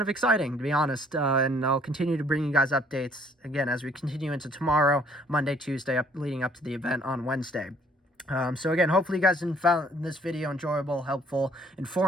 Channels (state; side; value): normal; both; correlation 0.61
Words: of exciting, to be honest. And I'll continue to bring you guys updates again as we continue into tomorrow, Monday, Tuesday, leading up to the event on Wednesday. So again, hopefully you guys found this video enjoyable, helpful,